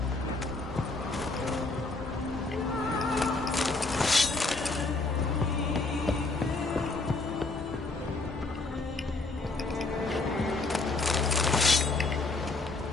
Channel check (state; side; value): quieter; right; 3.4 dB